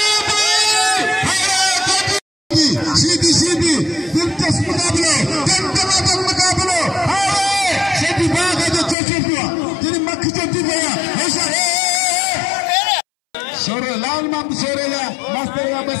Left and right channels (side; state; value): right; drops out; at 9.0 s